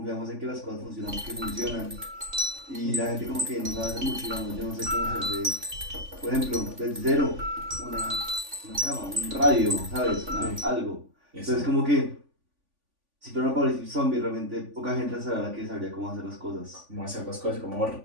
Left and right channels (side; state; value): left; late; 3.5 ms